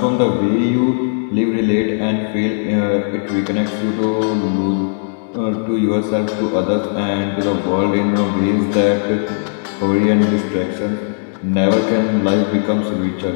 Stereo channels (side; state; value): right; silent; digital silence